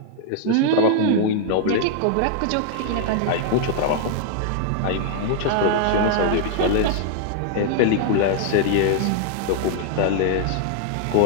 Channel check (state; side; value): different; both; correlation -0.01